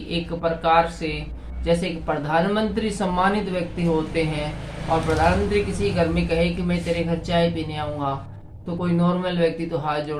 एक प्रकार से जैसे कि प्रधानमंत्री सम्मानित व्यक्ति होते हैं, और प्रधानमंत्री किसी घर में कहे कि मैं तेरे घर चाय पीने आऊंगा, तो कोई नॉर्मल व्यक्ति तो हाथ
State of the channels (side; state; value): both; identical; correlation 1.00